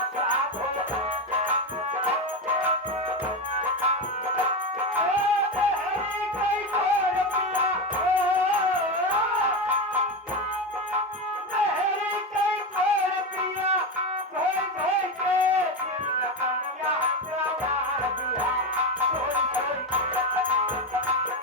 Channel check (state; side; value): normal; both; correlation 0.15